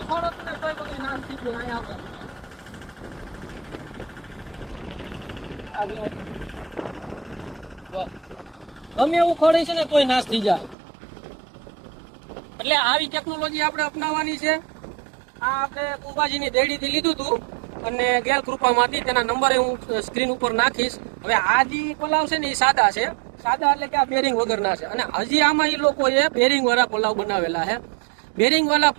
ફળ હતું ને તોય બધું નાશ થઈ ગયું. અહીંયા ગમે એવું ફળ છે ને તોય નાશ થઈ જાય. એટલે આવી ટેકનોલોજી આપણે અપનાવવાની છે. આ આપણે કુંભાજીની દેડીથી લીધું હતું અને ગેલ કૃપામાંથી. તેના નંબરે હું સ્ક્રીન ઉપર નાખીશ. હવે આ જે પલાવ છે ને એ સાદા છે. સાદા એટલે કે આ બેરિંગ વગરના છે. અને હજી આમાં એ લોકોએ બેરિંગ વાળા પલાવ બનાવેલા છે. બેરિંગ વાળા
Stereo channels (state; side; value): drops out; left; at 10.8 s